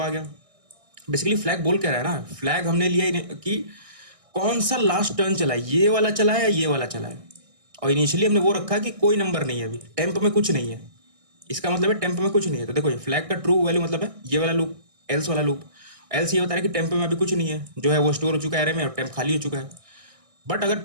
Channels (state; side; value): late; left; 1.6 ms